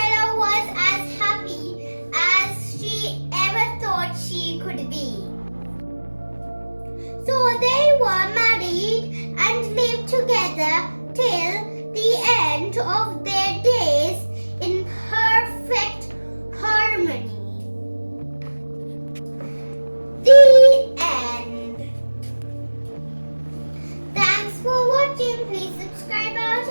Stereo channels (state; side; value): inverted; both; correlation -1.00